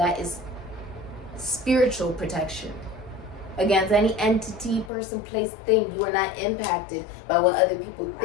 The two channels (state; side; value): drops out; right; at 4.9 s